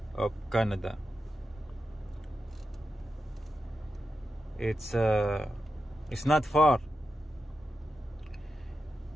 of Canada. It's not far,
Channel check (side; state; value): both; normal; correlation 0.89